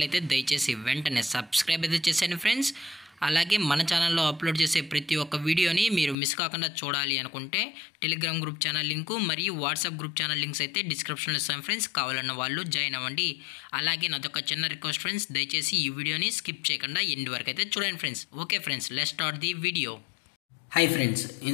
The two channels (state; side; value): drops out; right; at 6.2 s